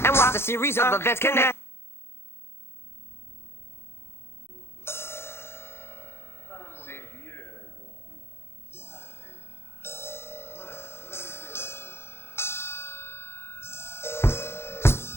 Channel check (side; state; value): right; late; 0.12 ms